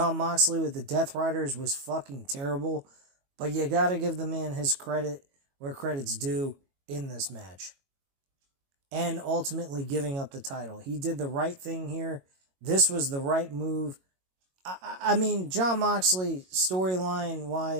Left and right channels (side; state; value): left; late; 22 ms